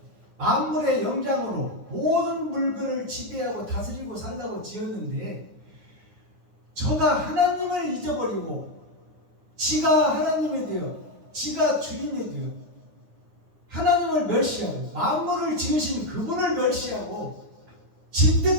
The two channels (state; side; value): late; left; 9.6 ms